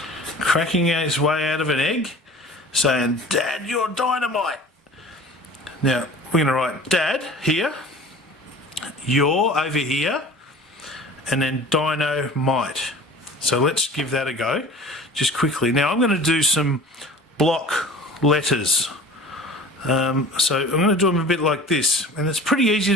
cracking his way out of an egg, saying, "Dad, you're dynamite." Now we're going to write Dad here, you're over here, and then Dino-mite. So let's give that a go just quickly. Now I'm going to do some block letters. So I'm going to do them a bit like this, and it's pretty easy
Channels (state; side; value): normal; both; correlation 0.43